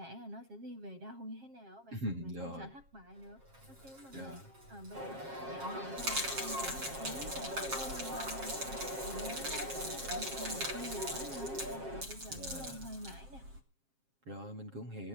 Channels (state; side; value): late; left; 7.5 ms